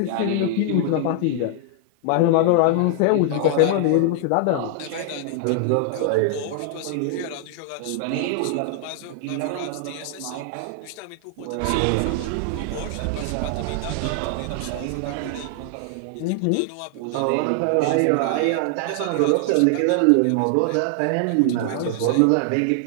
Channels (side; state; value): both; different; correlation 0.00